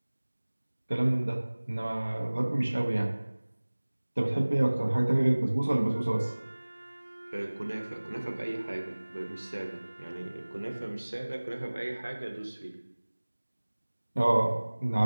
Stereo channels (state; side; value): inverted; both; correlation -1.00